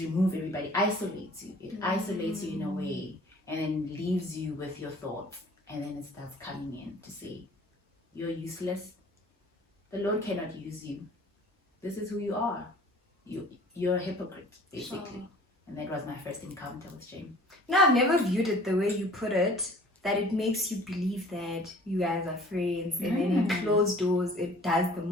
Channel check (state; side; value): normal; both; correlation 0.50